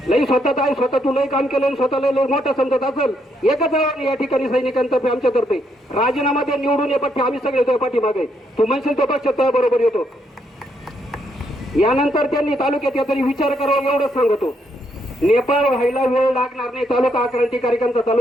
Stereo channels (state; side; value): normal; both; correlation 0.75